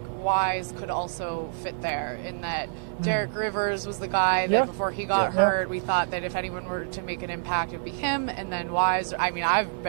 Wise could also fit there in that Derek Rivers was the guy that before he got hurt, we thought that if anyone were to make an impact, it would be him, and then Wise. I mean, I've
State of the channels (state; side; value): silent; left; digital silence